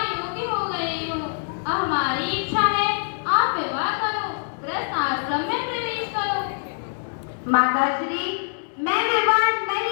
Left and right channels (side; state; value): right; silent; digital silence